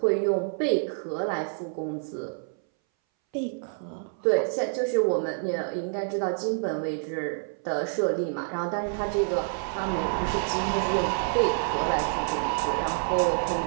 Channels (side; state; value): left; silent; 60 dB below the other